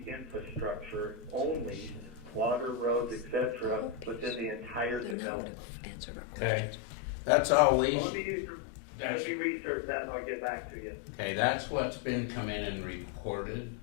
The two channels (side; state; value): right; drops out; at 5.2 s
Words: infrastructure only, water, roads, etc., within the entire development. Okay, that's all we, Well, let me research that and I'll get back to you. okay, that's what's been come in and recorded